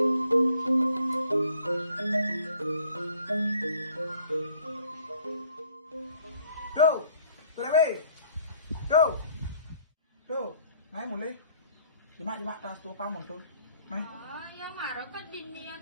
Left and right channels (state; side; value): inverted; both; correlation -0.60